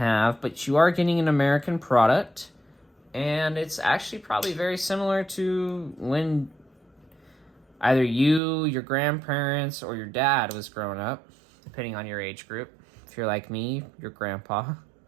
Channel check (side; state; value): left; drops out; at 8.4 s